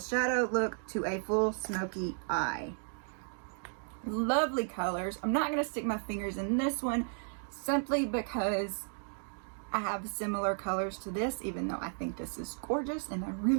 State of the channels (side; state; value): left; silent; 55 dB below the other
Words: look to a full smoky eye. Lovely colors. I'm not going to stick my fingers in this one simply because I have similar colors to this, even though I think this is gorgeous and I